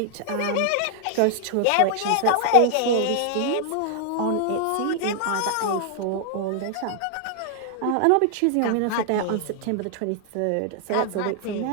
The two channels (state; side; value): different; both; correlation 0.00